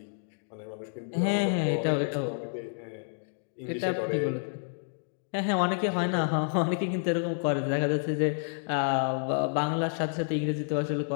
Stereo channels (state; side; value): silent; right; digital silence